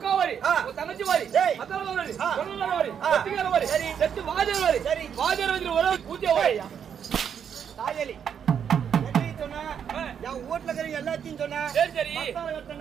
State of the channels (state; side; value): quieter; left; 8.0 dB